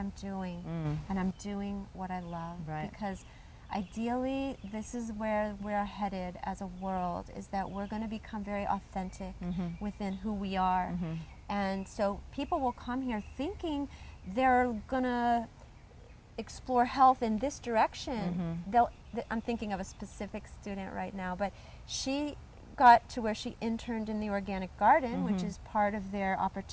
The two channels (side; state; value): both; identical; correlation 1.00